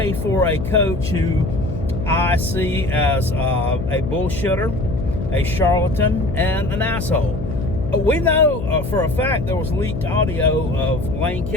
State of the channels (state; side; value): noise; left; hum, 7 dB below the sound